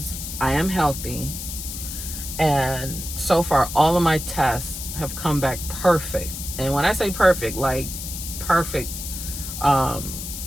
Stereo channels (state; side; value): noise; left; hiss, 8 dB below the sound